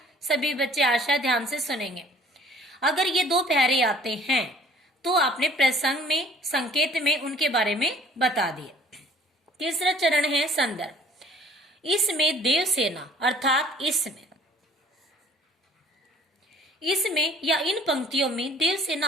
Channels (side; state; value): both; normal; correlation 0.53